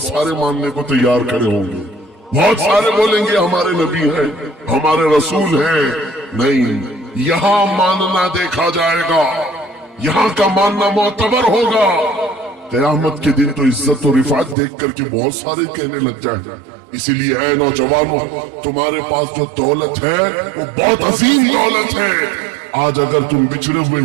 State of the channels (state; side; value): drops out; left; at 14.6 s